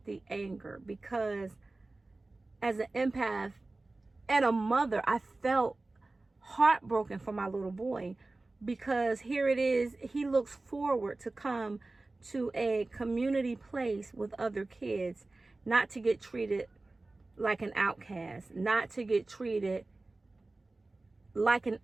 the anger, because as an empath and a mother, I felt heartbroken for my little boy, because here it is, he looks forward to come to a community place with other kids, not to get treated like an outcast, not to get treated like an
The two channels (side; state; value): left; quieter; 3.2 dB